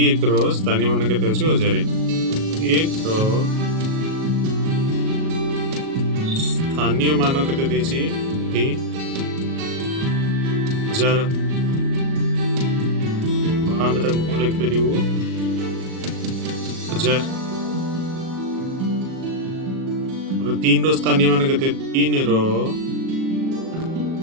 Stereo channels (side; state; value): left; late; 37 ms